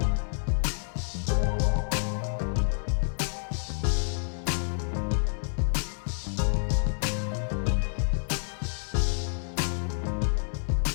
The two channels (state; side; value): silent; right; 59 dB below the other